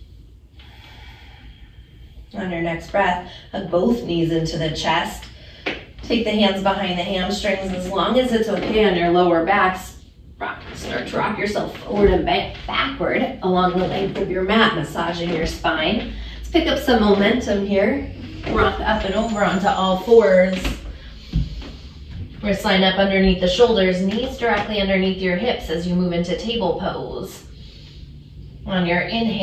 On your next breath, hug both knees into the chest. Take the hands behind the hamstrings as long as it's okay on your lower backs. Start to rock yourself forward and backward along the length of your mat, massaging your spine. Let's pick up some momentum here. Rock up and over onto all fours. Wrists line up underneath the shoulders, knees directly underneath your hips as you move into table pose. On your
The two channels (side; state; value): both; identical; correlation 1.00